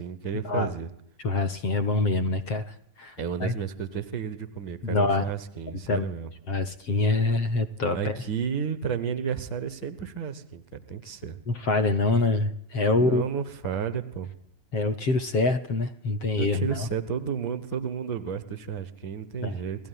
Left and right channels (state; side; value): late; right; 7.6 ms